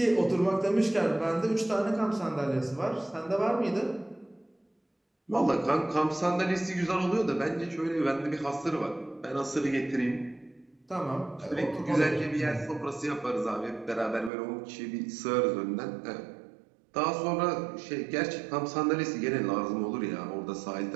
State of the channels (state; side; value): drops out; left; at 14.3 s